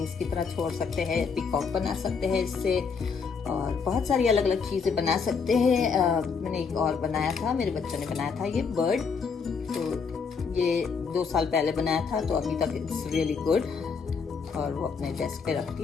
की तरह छोड़ सकते हैं, पीकॉक बना सकते हैं इससे, और बहुत सारी अलग अलग चीज़ें बना सकते हैं। मैंने एक और बनाया था, मेरे बच्चों ने बनाया था ये बर्ड, तो ये 2 साल पहले बनाया था, तो अभी तक इट्स रियली गुड, और वो अपने डेस्क पे रखती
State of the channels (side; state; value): right; quieter; 5.6 dB